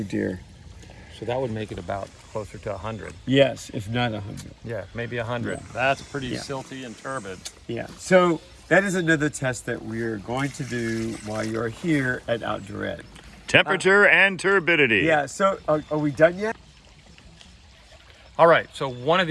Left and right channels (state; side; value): identical; both; correlation 1.00